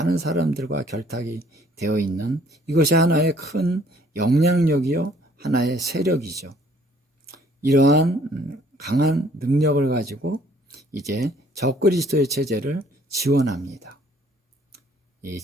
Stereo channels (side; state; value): both; normal; correlation 0.60